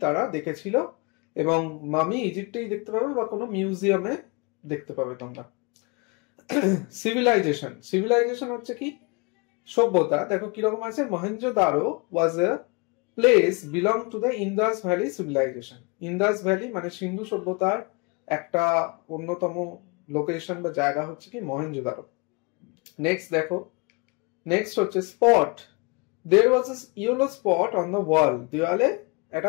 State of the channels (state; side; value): quieter; right; 30.2 dB